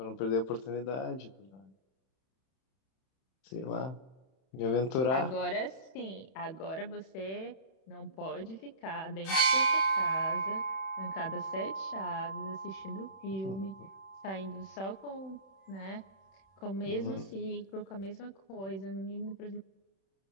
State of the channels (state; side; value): late; right; 31 ms